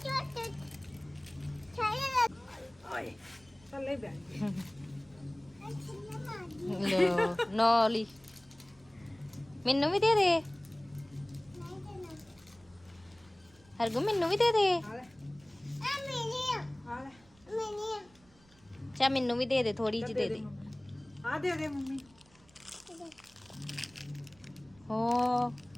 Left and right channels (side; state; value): right; noise; rumble, 29 dB below the sound